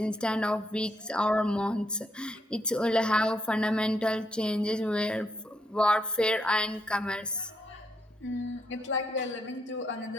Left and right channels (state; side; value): normal; both; correlation 0.77